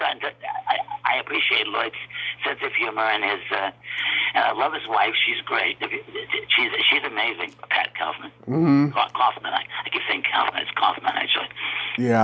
appreciate Lloyd's sense of humor and his. And I love his wife. She's great. She's amazing. Pat Kaufman. Mm-hmm. Kaufman. I keep saying Kaufman. It's Kaufman, actually.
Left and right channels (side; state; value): both; identical; correlation 1.00